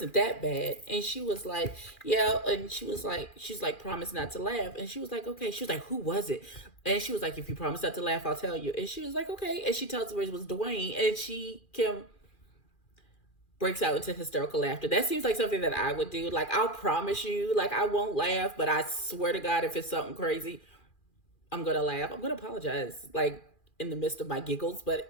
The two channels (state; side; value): late; right; 2.4 ms